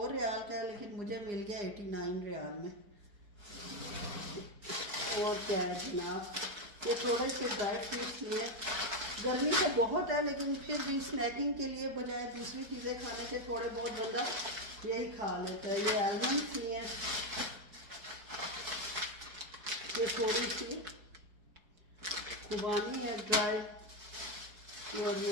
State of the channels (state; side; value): late; left; 4.6 ms